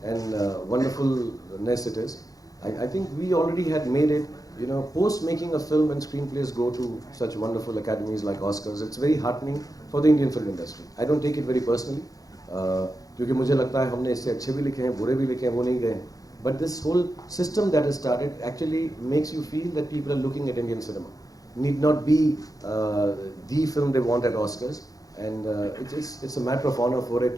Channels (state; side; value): late; right; 0.17 ms